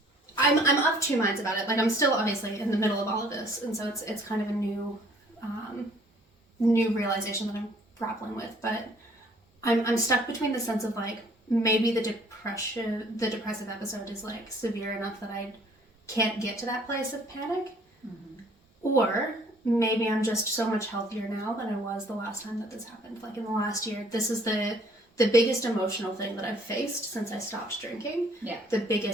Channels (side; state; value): both; normal; correlation 0.58